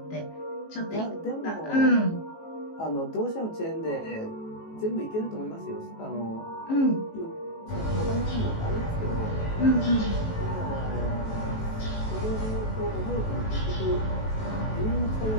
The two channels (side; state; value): right; late; 18 ms